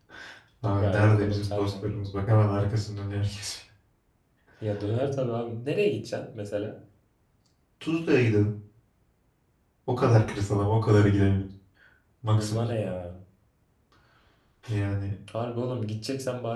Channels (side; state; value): both; identical; correlation 1.00